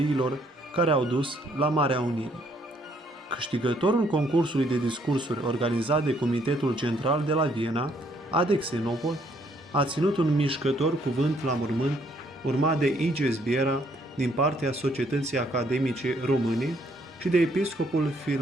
care au dus la Marea Unire. Câștigătorul concursului de discursuri organizat de Comitetul Central de la Viena, Adexenopol, a ținut un mișcător cuvânt la mormânt, urmat de Iges Biera din partea Societății Academice Române și de episcopul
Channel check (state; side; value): normal; both; correlation 0.68